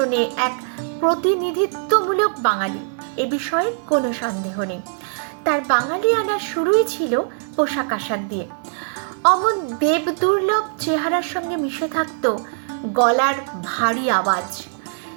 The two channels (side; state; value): left; silent; digital silence